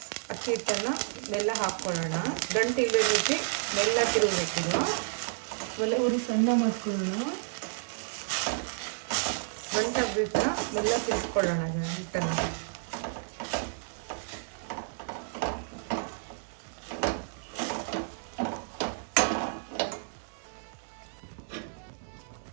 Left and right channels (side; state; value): left; silent; digital silence